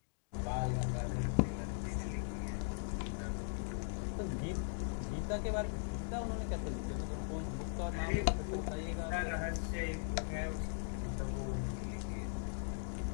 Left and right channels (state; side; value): silent; right; digital silence